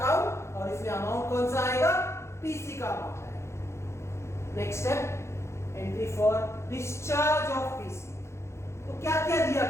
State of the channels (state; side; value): late; right; 0.13 ms